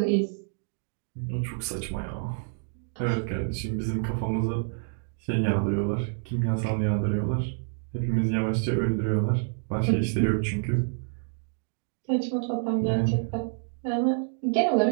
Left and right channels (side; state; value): left; silent; digital silence